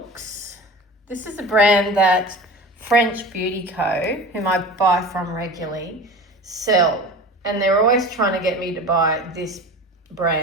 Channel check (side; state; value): both; normal; correlation 0.35